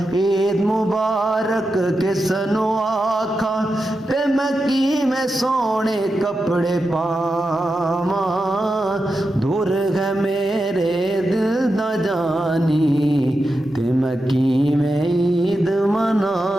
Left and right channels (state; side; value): normal; both; correlation 0.89